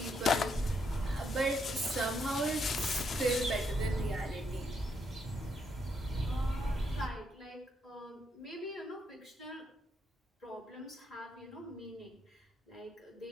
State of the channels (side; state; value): both; normal; correlation 0.77